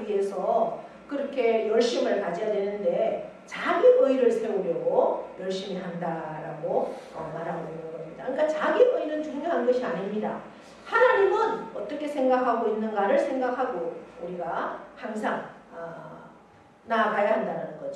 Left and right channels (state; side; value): identical; both; correlation 1.00